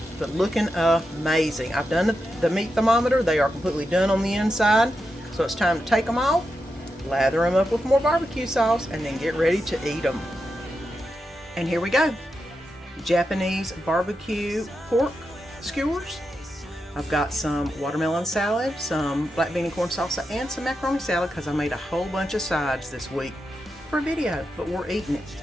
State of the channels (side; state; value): both; normal; correlation 0.87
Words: but looking amazing. I've done the meat thermometer. They are completely done on the inside. So it's time to take them off, lather them up with more barbecue sauce, and then get ready to eat them. And here we go. Japanese barbecue pork skewers. I've got some watermelon salad, some black bean and corn salsa, and some macaroni salad because I made a whole bunch of sides this week for a video, but we're eating it.